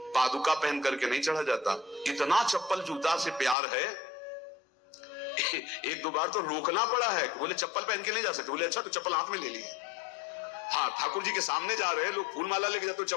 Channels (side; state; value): right; drops out; at 3.6 s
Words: पादुका पहन करके नहीं चढ़ा जाता। इतना चप्पल जूता से प्यार है, एक दो बार तो रोकना पड़ा है। बोले चप्पल पहन के नहीं जा सकते। बोले अच्छा तो चप्पल हाथ में ले लिए। हाँ ठाकुर जी के सामने जा रहे हैं लोग, फूल माला लेके जाते तो